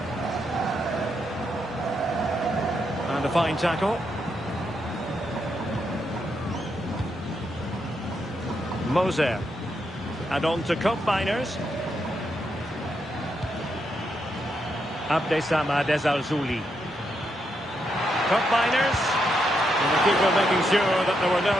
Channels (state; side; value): normal; both; correlation 0.81